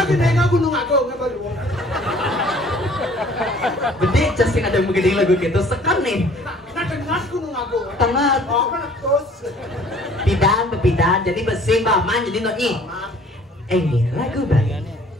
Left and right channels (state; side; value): normal; both; correlation 0.54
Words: gede nggak gunung agung nggak baru. Gede casing ada begining lagu gitu sekan nih. Nah dengar gunung agung. Tengah. Oh kan terus. Pidan jadi besi baman jadi nonyi. Ini lagu Bali.